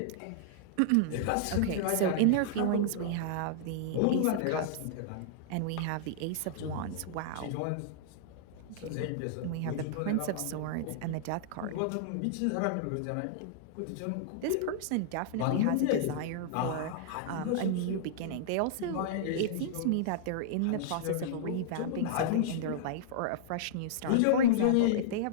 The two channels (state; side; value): different; both; correlation -0.02